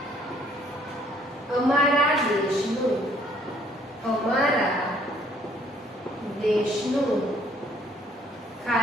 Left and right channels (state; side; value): normal; both; correlation 0.63